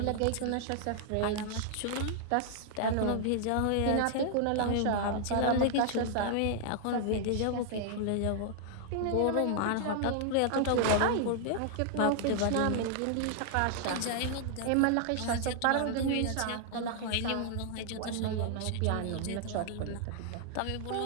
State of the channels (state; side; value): different; both; correlation 0.00